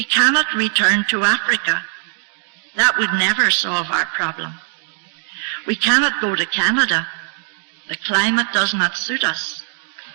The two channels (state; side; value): silent; left; 56 dB below the other